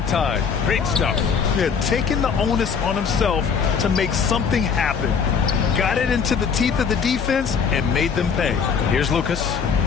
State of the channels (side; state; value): right; quieter; 6.3 dB